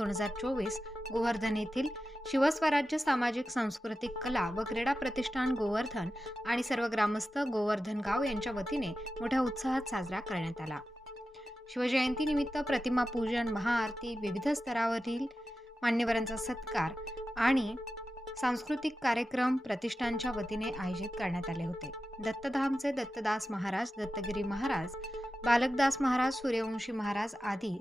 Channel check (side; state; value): both; normal; correlation 0.92